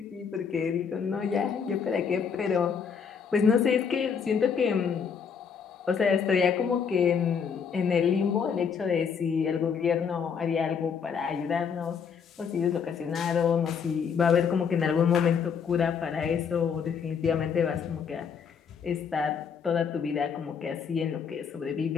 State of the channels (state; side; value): quieter; right; 6.6 dB